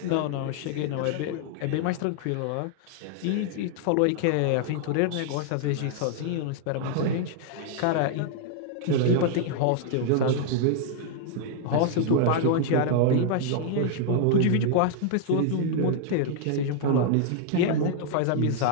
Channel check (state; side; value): different; both; correlation 0.00